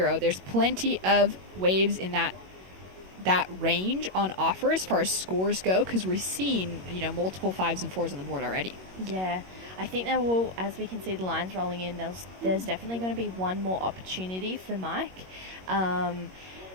There's plenty of waves in that range on offer as far as scores go, because we're seeing, you know, multiple 5s and 4s on the board already. Yeah, I think there will, as we can see the lines rolling in, there's definitely going to be one more opportunity for Mike.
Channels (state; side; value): late; left; 21 ms